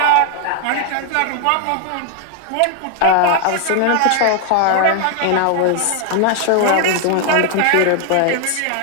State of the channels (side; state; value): both; different; correlation 0.00